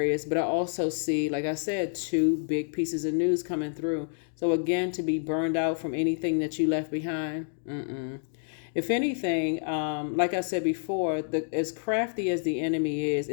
But I also see, like I said, two big pieces of news coming through. So again, to be burned out from anything that you left behind, if anything, like I said before, as crafty as the enemy is,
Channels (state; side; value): silent; right; digital silence